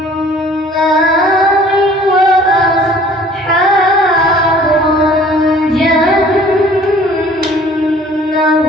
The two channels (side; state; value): both; normal; correlation 0.52